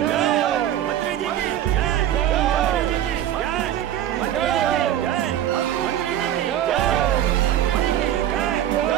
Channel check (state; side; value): quieter; left; 11.5 dB